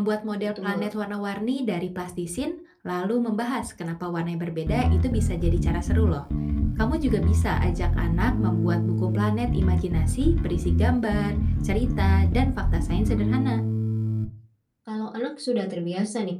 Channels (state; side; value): identical; both; correlation 1.00